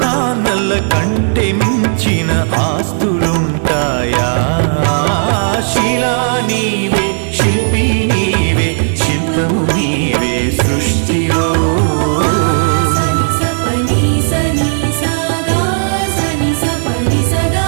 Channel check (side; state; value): left; silent; digital silence